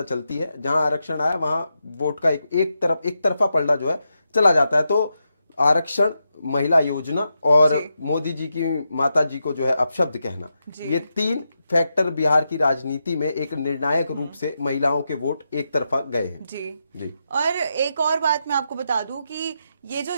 चलती है, जहां आरक्षण आया वहां वोट का एक तरफा पलड़ा जो है चला जाता है। तो आरक्षण, महिला योजना और मोदी जी की माता जी को जो है अपशब्द कहना, ये तीन फैक्टर बिहार की राजनीति में एक निर्णायक रूप से महिलाओं के वोट एक तरफा गए हैं। जी। और एक और बात मैं आपको बता दूं कि ये जो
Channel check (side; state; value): both; inverted; correlation -0.86